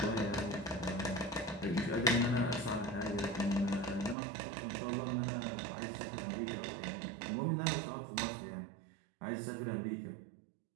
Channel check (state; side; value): drops out; left; at 4.2 s